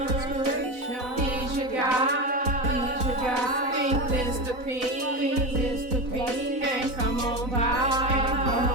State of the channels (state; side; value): late; left; 4.0 ms